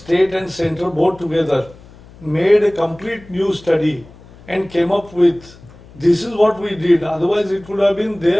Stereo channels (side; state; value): left; noise; hum, 22 dB below the sound